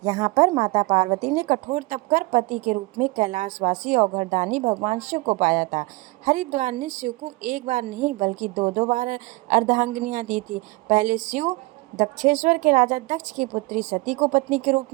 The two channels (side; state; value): left; quieter; 23.2 dB